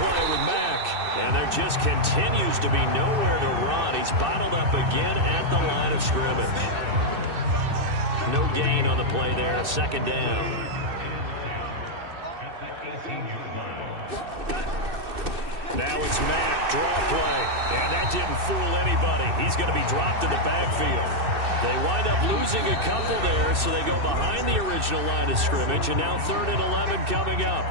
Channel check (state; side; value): late; left; 2.6 ms